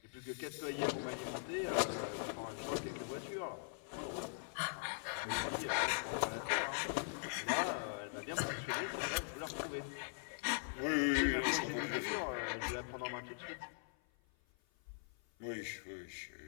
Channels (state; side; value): silent; right; 50 dB below the other